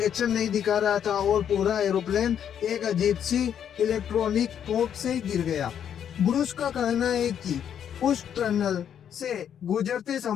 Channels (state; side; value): quieter; right; 9.0 dB